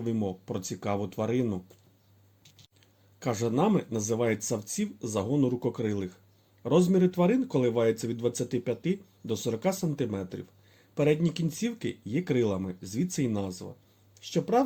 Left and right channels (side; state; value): both; identical; correlation 1.00